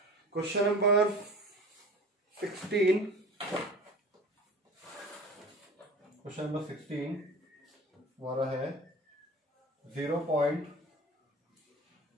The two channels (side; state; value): both; normal; correlation 0.38